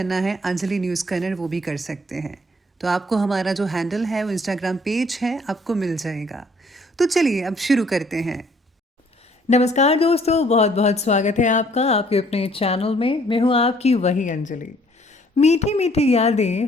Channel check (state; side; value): normal; both; correlation 0.61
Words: है अंजलि न्यूज़ कन्नड़, वो भी कर सकते हैं। तो आपको हमारा जो हैंडल है वो इंस्टाग्राम पेज है आपको मिल जाएगा। तो चलिए अब शुरू करते हैं। नमस्कार दोस्तों, बहुत बहुत स्वागत है आपका आपके अपने चैनल में। मैं हूँ आपकी वही अंजलि। मीठी मीठी यादें